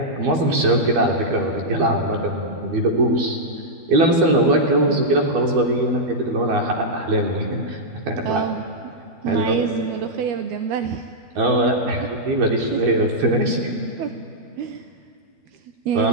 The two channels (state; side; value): late; left; 12 ms